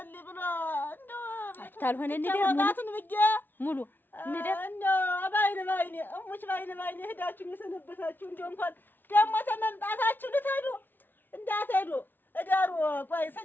ብሎ እንደው ታልሆነ እንደር ሙሉ እንደር እንደው ባይኔ እሞች ባይኔ ሄዳችሁ የሰነበታችሁ እንደው እንኳን ደግሞ ተመምጣታችሁ ልትሄዱ እንዳትሄዱ እደሩ። ቆይ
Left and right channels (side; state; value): right; late; 0.094 ms